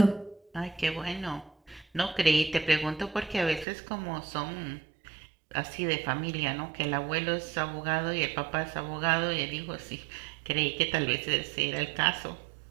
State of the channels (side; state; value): left; drops out; at 3.7 s